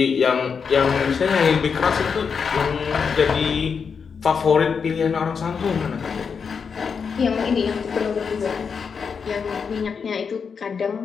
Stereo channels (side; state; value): right; quieter; 6.0 dB